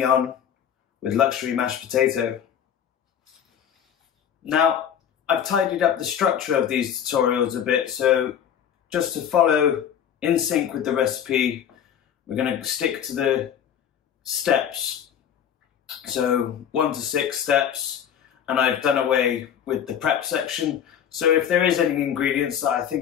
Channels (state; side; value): quieter; right; 8.9 dB